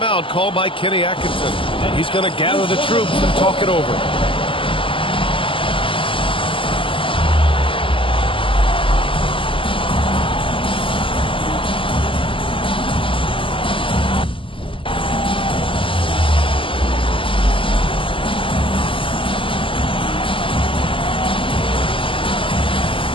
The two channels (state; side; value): late; right; 0.25 ms